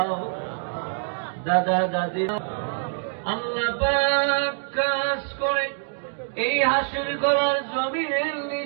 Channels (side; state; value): left; silent; digital silence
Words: দাদা দাদি আল্লাহ পাক কাজ করে এই হাসির গলার জমিনের